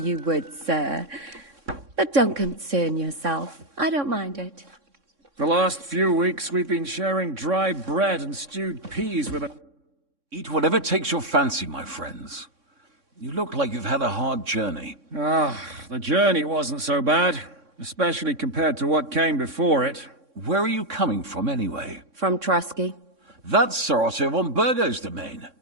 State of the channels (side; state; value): left; late; 3.6 ms